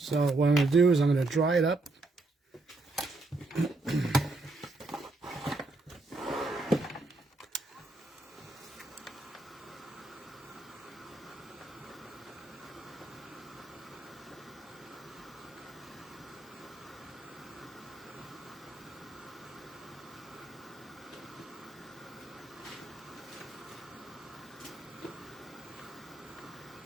what I'm going to do is I'm going to dry it up.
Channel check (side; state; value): left; quieter; 3.0 dB